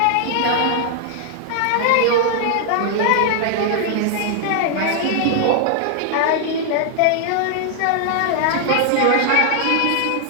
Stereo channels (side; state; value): both; different; correlation -0.01